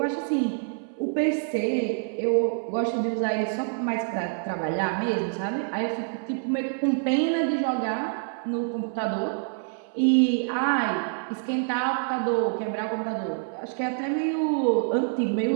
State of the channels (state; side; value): silent; left; 60 dB below the other